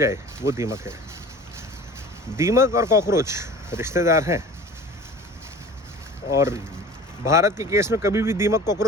वो दीमक है। दीमक और कॉकरोच रिश्तेदार हैं, और भारत के केस में कभी भी दीमक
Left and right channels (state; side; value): normal; both; correlation 0.42